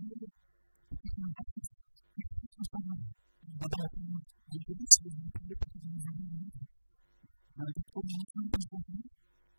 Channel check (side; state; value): both; inverted; correlation -1.00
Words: peut-être une grossesse extra-utérine. Le bébé n'est pas dans l'utérus, mais il est plus haut, peut-être dans les ovaires ou autre. Les docteurs, les médecins pensaient cela.